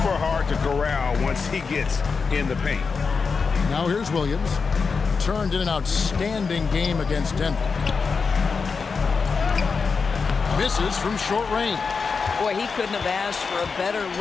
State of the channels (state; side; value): quieter; right; 5.1 dB